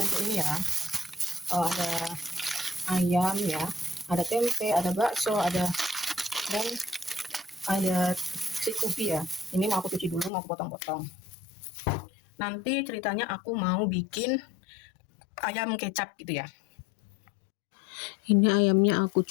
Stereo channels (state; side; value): drops out; right; at 10.3 s